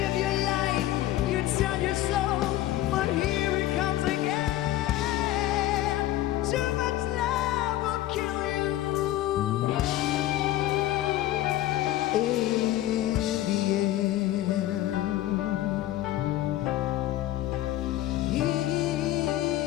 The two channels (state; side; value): quieter; right; 14.5 dB